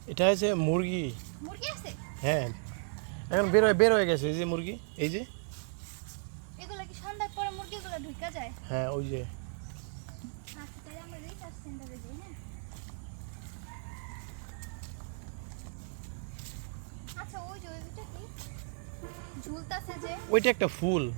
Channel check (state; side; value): silent; left; 55 dB below the other